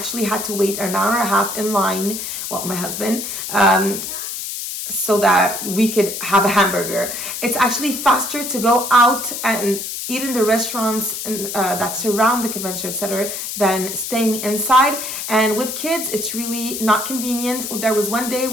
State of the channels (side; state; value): left; noise; hiss, 6 dB below the sound